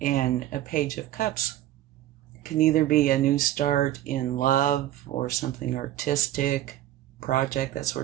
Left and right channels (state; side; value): quieter; left; 13.5 dB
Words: And a Page of Cups Can either be a new start in love or something artistic, project, that